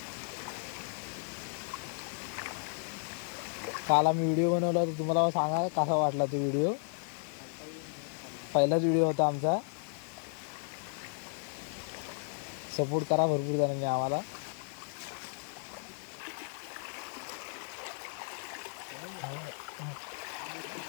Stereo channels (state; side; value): silent; right; 55 dB below the other